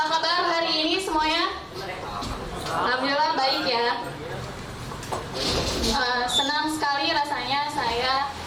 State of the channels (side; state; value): both; identical; correlation 1.00